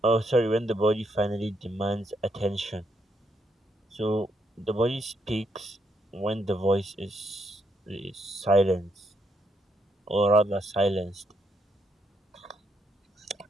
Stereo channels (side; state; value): both; normal; correlation 0.76